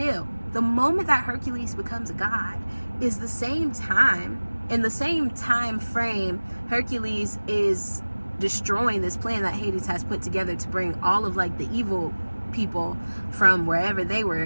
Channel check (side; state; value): both; inverted; correlation -1.00